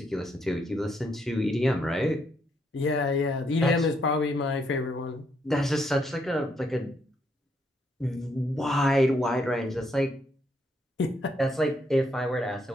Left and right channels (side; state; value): both; normal; correlation 0.75